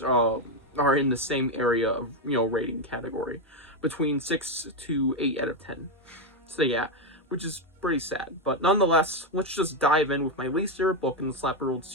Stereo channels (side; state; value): both; normal; correlation 0.06